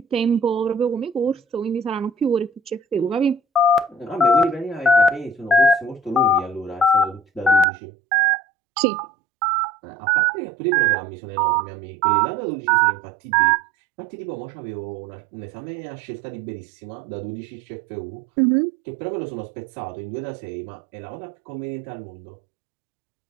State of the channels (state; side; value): drops out; left; at 7.7 s